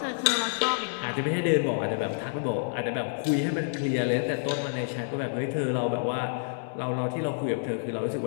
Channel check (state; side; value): silent; right; digital silence